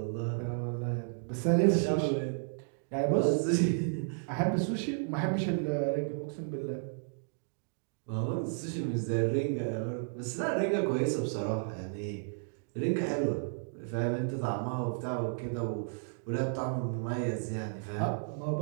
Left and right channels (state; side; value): silent; left; digital silence